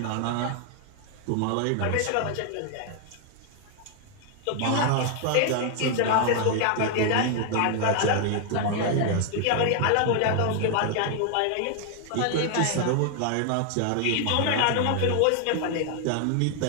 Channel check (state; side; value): different; both; correlation 0.00